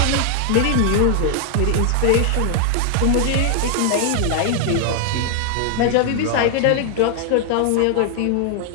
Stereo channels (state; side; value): different; both; correlation 0.00